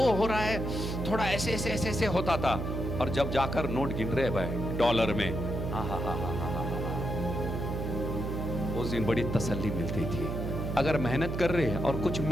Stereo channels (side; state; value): right; noise; hum, 3 dB below the sound